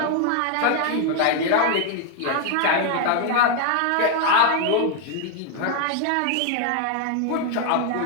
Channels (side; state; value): both; different; correlation 0.00